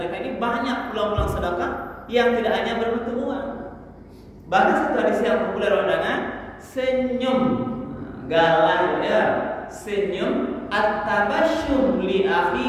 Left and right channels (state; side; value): identical; both; correlation 1.00